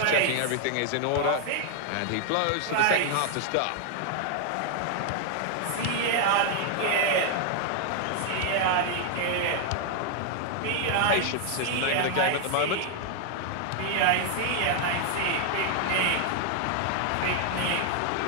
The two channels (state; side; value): different; both; correlation 0.00